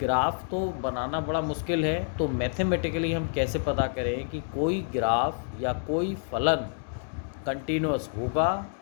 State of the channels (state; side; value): silent; right; 59 dB below the other